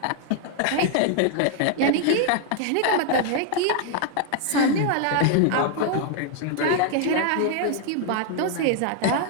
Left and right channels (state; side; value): different; both; correlation 0.00